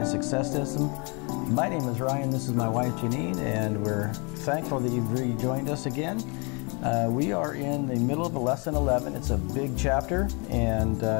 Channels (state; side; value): quieter; right; 32.4 dB